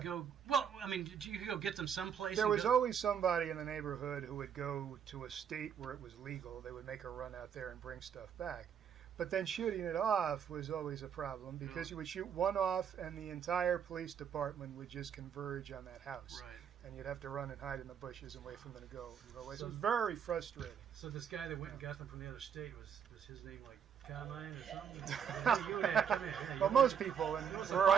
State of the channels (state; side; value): quieter; left; 7.8 dB